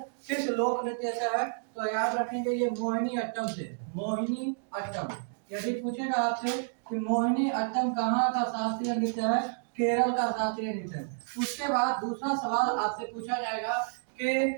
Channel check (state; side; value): silent; left; digital silence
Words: किस लोक नृत्य से है? तो याद रखेंगे ये मोहिनी अट्टम से। मोहिनी अट्टम यदि पूछेगा आपसे कि मोहिनी अट्टम कहाँ का शास्त्रीय नृत्य है? केरल का शास्त्रीय नृत्य। उसके बाद दूसरा सवाल आपसे पूछा जाएगा कि